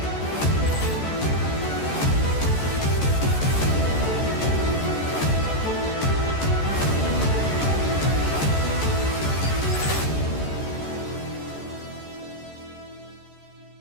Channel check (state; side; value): late; right; 14 ms